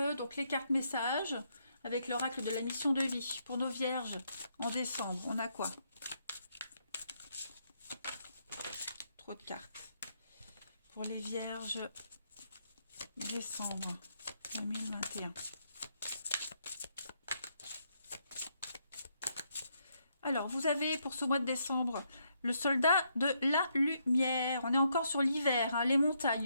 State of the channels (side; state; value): both; inverted; correlation -0.76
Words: donc les cartes messages avec l'oracle de la mission de vie pour nos vierges en décembre. On a quoi? Trop de cartes. Pour les vierges, décembre 2021. Alors, vous avez pour ce mois de décembre le soldat de la lumière. On est encore sur l'hiver, hein, les